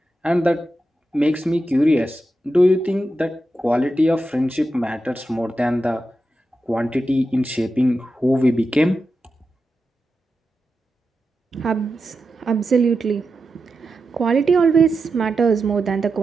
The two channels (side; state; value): both; normal; correlation 0.89